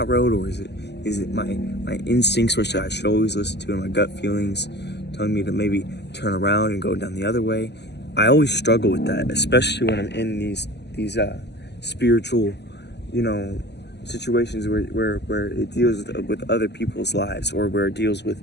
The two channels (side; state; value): right; late; 0.50 ms